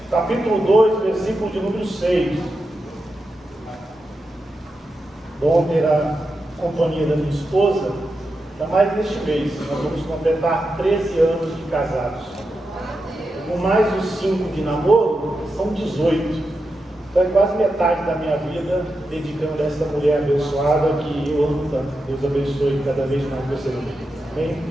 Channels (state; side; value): normal; both; correlation 0.88